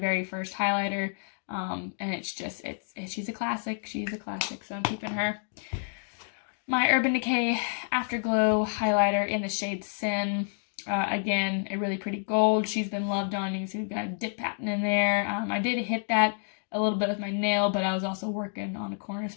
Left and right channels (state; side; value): silent; right; digital silence